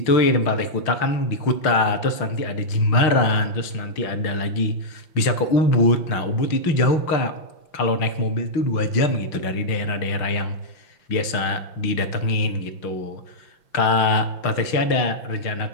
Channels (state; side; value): late; right; 5.9 ms